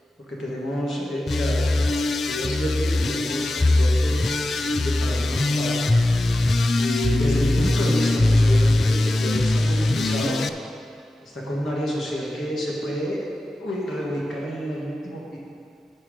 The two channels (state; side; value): normal; both; correlation 0.93